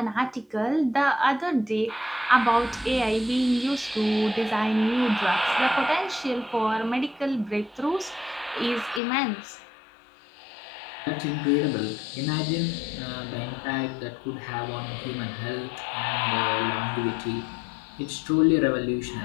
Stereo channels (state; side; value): drops out; right; at 9.0 s